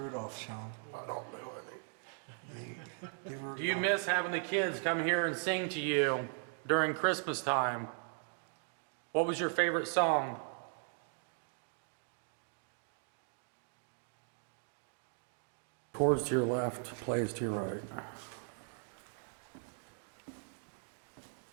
Shaun. I don't know any. Do you miss having the kids come here and sing to you during Christmas time? What was your favorite song? Chords to your left, plays to your right.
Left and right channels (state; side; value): silent; left; 52 dB below the other